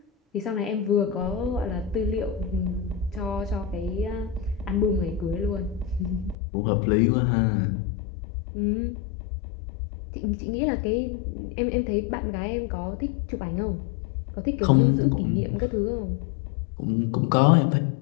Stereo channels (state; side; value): drops out; right; at 6.4 s